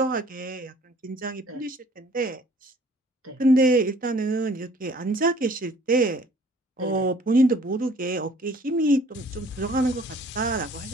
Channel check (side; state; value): both; normal; correlation 0.55